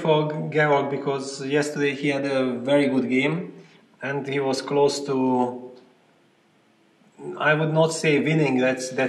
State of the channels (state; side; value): identical; both; correlation 1.00